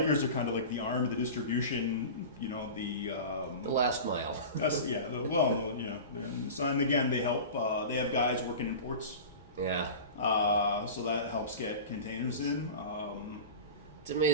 are kind of like the arm of the distribution. The last mile. That's So, and again, they help. They have guys working in ports. Yeah. So that helps get containers in. It's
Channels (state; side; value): inverted; both; correlation -0.32